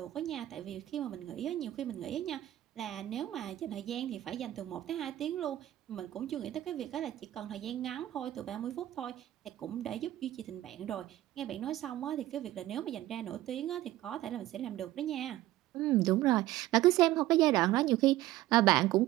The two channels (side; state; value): left; quieter; 15.0 dB